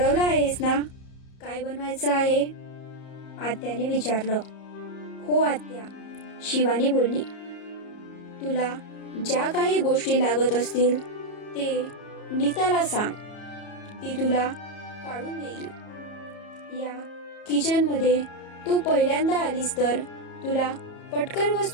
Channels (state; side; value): late; right; 34 ms